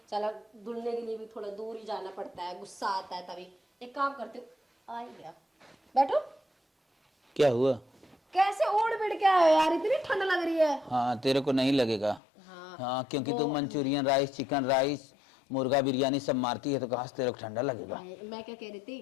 चला धुलने के लिए भी थोड़ा दूर ही जाना पड़ता है, गुस्सा आता है तभी। एक काम करते हो, आ ही गया, बैठो। क्या हुआ? कैसे ओढ़ बिड़ के आए हो यार, इतनी ठंड लग रही है। हाँ तेरे को नहीं लगेगा। हाँ क्योंकि तू मंचूरियन राइस, चिकन राइस, मुर्गा बिरयानी सब मारती है, तो कहाँ से तेरे को ठंडा लगेगा। मैं क्या कह रही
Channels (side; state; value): right; drops out; at 12.2 s